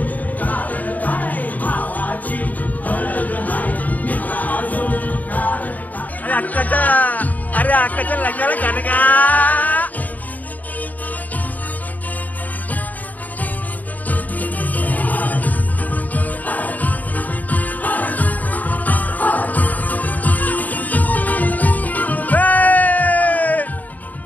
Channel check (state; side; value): late; right; 0.078 ms